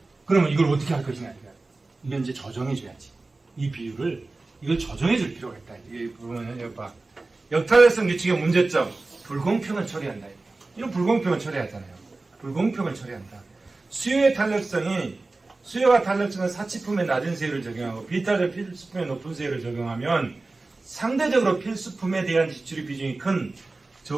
그러면 이걸 어떻게 할 것이냐 이거야. 이건 이제 조정해줘야지. 이 비율을 이걸 조정해줄 필요가 있다. 이게 보면은 여기 봐. 역탄력성 규칙의 문제점, 불공평을 처리한다. 이런 불공평을 처리하잖아요. 불공평을 처리한다. 수요가 탄력성은 사치품에 낮은 세율을 적용하고 비탄력 필수품에 높은 세율을 적용하면 상대적으로 필수품에 대한 지출의 비중이 큰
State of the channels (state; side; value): quieter; left; 3.4 dB